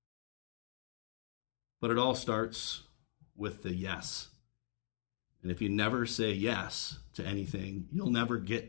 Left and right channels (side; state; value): right; silent; digital silence